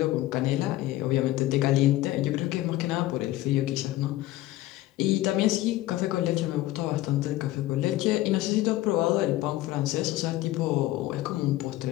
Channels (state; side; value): quieter; right; 16.0 dB